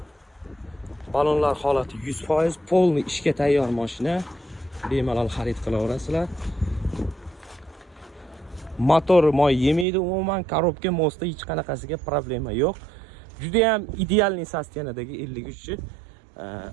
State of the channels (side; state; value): left; drops out; at 9.9 s